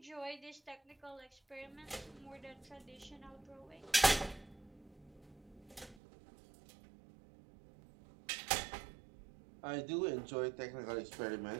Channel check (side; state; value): left; drops out; at 6.0 s